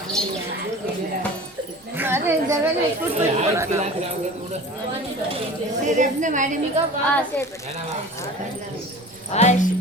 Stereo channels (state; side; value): normal; both; correlation 0.39